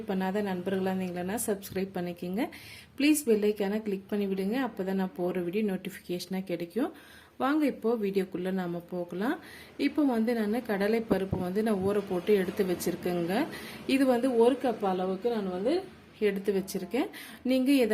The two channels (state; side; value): identical; both; correlation 1.00